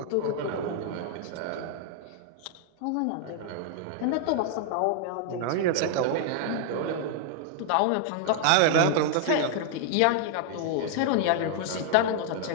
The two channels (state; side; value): different; both; correlation 0.00